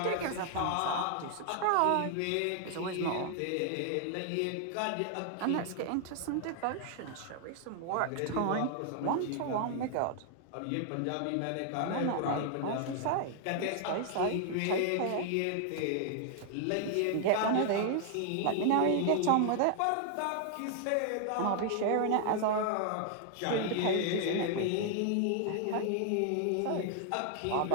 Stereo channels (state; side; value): different; both; correlation 0.00